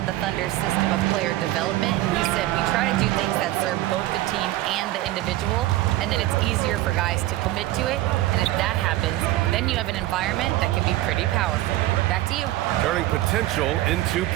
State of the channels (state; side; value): quieter; left; 16.1 dB